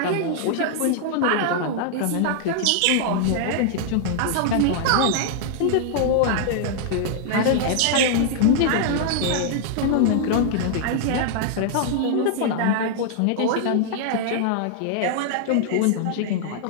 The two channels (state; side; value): different; both; correlation -0.01